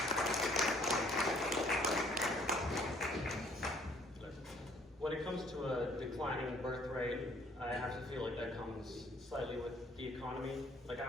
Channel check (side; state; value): both; normal; correlation 0.61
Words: When it comes to a declining birth rate, I have to feel like that comes slightly with the economy. Like,